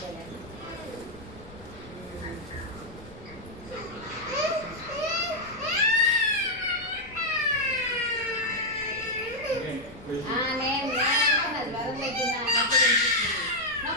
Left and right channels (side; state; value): left; noise; rumble, 19 dB below the sound